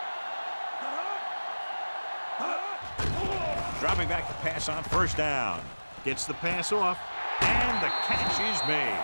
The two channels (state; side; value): inverted; both; correlation -1.00